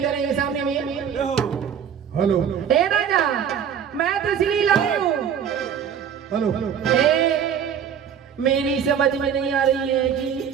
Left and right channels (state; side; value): quieter; left; 8.2 dB